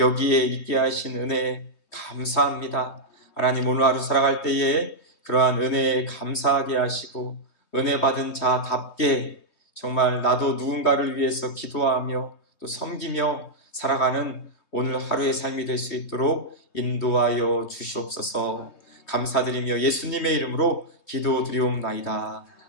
있게 하신 은혜 감사합니다. 하나님, 오늘 하루 살아갈 때에 그러한 은혜에 감사하게 하시고 은혜 받은 자답게 정말 나도 누군가를 위해서 기도하며 또 섬기며 살아가는 오늘 하루의 삶이 될 수 있도록 인도하여 주시옵소서. 감사드리며 예수님의 이름으로 기도드리옵나이다.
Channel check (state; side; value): late; right; 3.3 ms